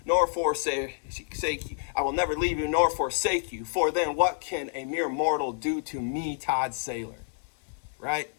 nor forsake you. I will never leave you nor forsake you. For then what can a mere mortal do to me, Todd Saylor? Right?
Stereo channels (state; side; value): silent; right; digital silence